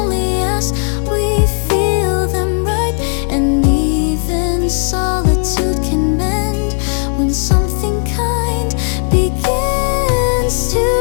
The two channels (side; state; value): right; silent; digital silence